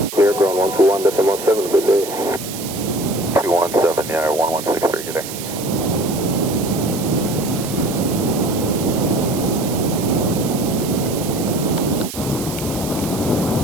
Ground 121.7, good day. 217, yeah, or 1163, good day.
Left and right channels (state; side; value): noise; right; hiss, 10 dB below the sound